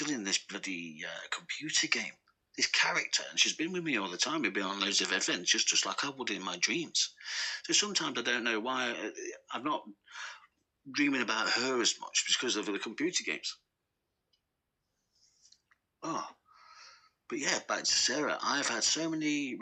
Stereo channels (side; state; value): both; identical; correlation 1.00